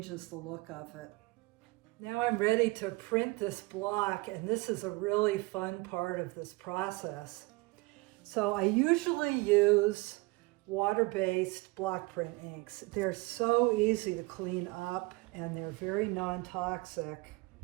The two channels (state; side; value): quieter; left; 23.4 dB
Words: the look of it. Now I'm ready to print this block, and this is a really fun part of this process. So I usually use water-based block print inks. They're so easy to clean up and they're very non-toxic.